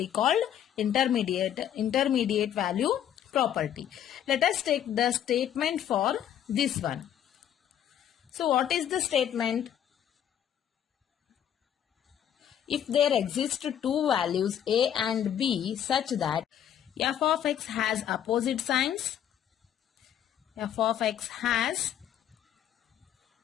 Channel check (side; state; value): right; quieter; 10.0 dB